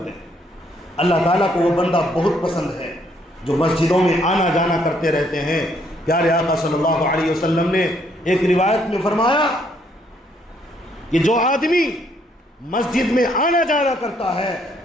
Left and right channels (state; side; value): normal; both; correlation 0.69